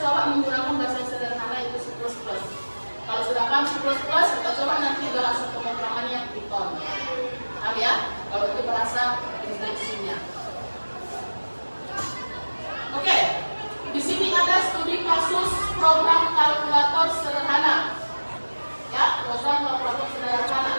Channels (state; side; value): inverted; both; correlation -1.00